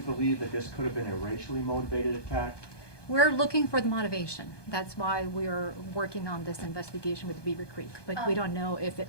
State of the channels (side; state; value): right; late; 1.2 ms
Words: that this could have been a racially motivated attack? We're looking for the motivation. That's why we're working on this investigation with Beavercreek, but we don't know if it